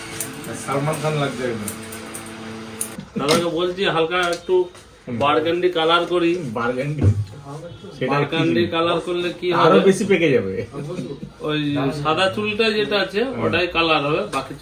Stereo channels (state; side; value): identical; both; correlation 1.00